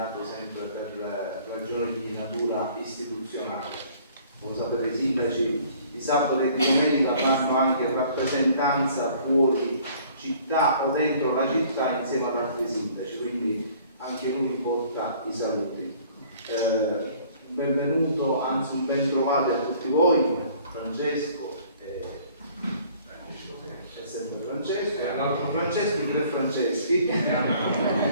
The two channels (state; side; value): inverted; both; correlation -0.55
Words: sempre per ragioni di natura istituzionale. Come sapete, i sindaci di sabato e di domenica fanno anche rappresentanza fuori città o dentro la città insieme ad altri sindaci, quindi anche lui mi porta i saluti. Un benvenuto, anzi un ben trovati a tutti voi, Francesco, è sempre Francesco, e l'altro Francesco, i tre Franceschi,